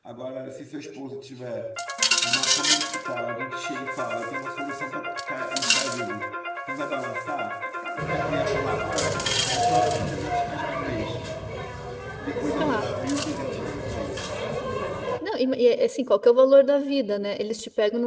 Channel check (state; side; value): identical; both; correlation 1.00